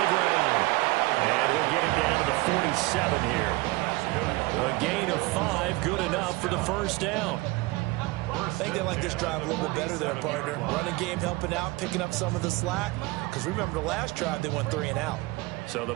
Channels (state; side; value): quieter; left; 22.2 dB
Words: ground. And we'll get him down to the 47 here. A gain of 5, good enough for the first down. I think they like this drive a little bit better there, partner. Running game helping out, picking up some of the slack. Because remember, the last drive, they went 3 and out. So the